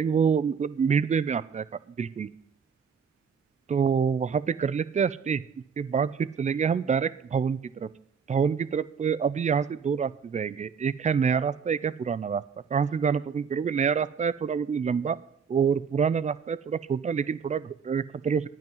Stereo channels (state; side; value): quieter; left; 6.3 dB